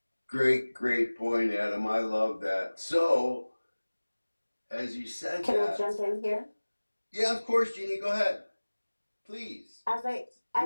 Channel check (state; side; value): inverted; both; correlation -1.00